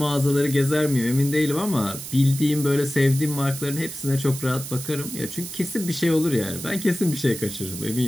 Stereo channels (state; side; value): noise; right; hiss, 10 dB below the sound